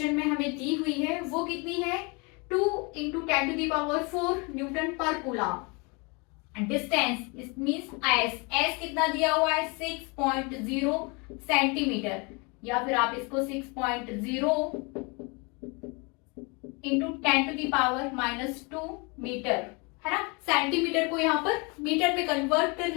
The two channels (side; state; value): right; quieter; 30.1 dB